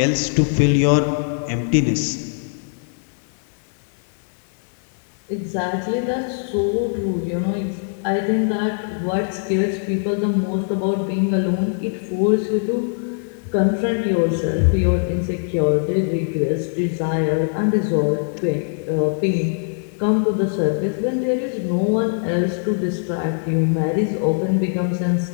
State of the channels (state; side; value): silent; right; digital silence